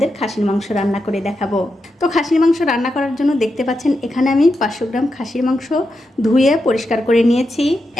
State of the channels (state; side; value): normal; both; correlation 0.86